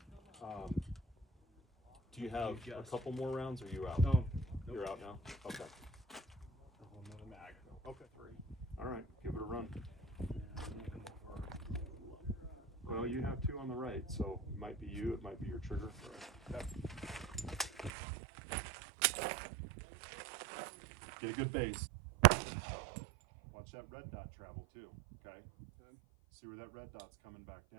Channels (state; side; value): drops out; left; at 17.9 s